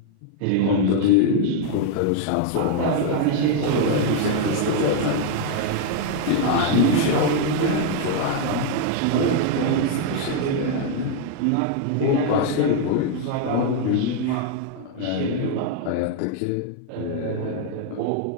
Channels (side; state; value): both; different; correlation 0.00